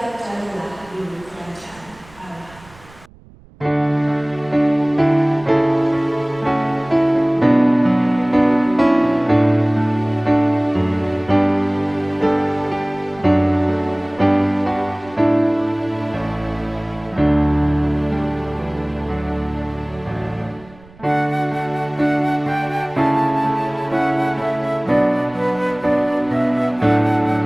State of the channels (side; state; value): right; noise; rumble, 24 dB below the sound